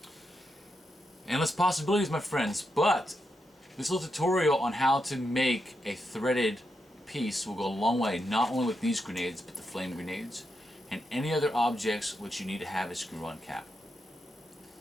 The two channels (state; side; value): normal; both; correlation 0.84